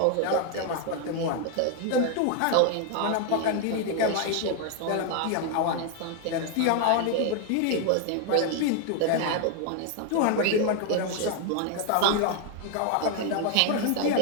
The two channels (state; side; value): different; both; correlation 0.00